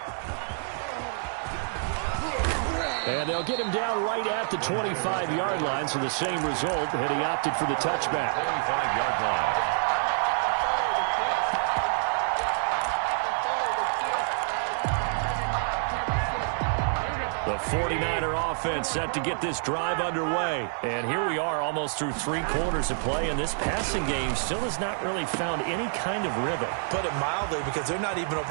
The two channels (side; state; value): left; silent; digital silence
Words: And they'll get him down right at the 25-yard line. So the same result, and he opted for the touchback. 25-yard line. The 49er offense set to get this drive underway. And here we are almost through 3 quarters of play, and this passing game still has not really found any kind of rhythm. Put it mildly, because they're not even